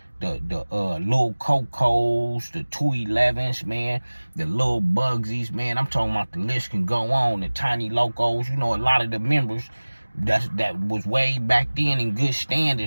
the little Cocos, the 211s, man, the little Bugsies, man. I'm talking about the list can go on, the Tiny Locos. You know, a lot of the members that was way back then in good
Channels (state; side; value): inverted; both; correlation -1.00